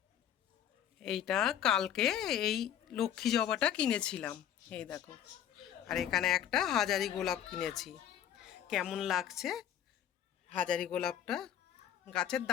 এইটা কালকে এই লক্ষ্মী জবাটা কিনেছিলাম, এই দেখো। আর এখানে একটা হাজারি গোলাপ কিনেছি। কেমন লাগছে হাজারি গোলাপটা? গাছের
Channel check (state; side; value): quieter; right; 10.0 dB